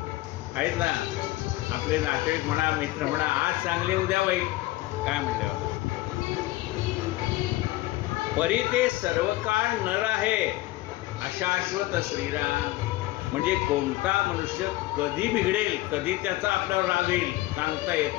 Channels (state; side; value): quieter; right; 17.9 dB